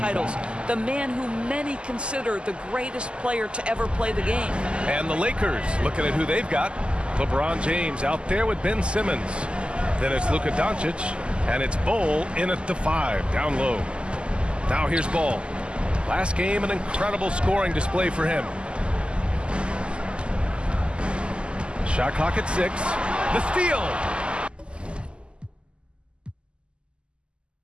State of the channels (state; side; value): late; left; 0.051 ms